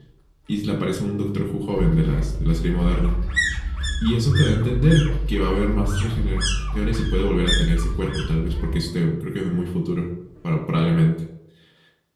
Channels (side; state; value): both; identical; correlation 1.00